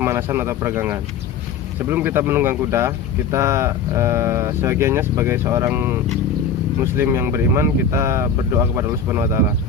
atau peregangan. Sebelum kita menunggang kuda, kita sebagiannya sebagai seorang Muslim yang beriman, kita berdoa kepada Allah Subhanahu Wa Taala.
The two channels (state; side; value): quieter; right; 6.3 dB